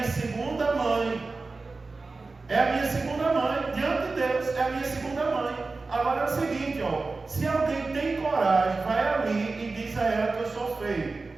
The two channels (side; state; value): left; quieter; 3.8 dB